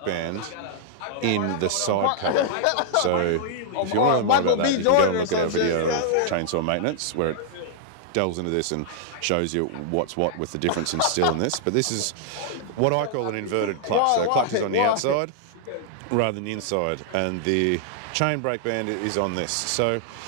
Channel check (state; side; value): different; both; correlation -0.01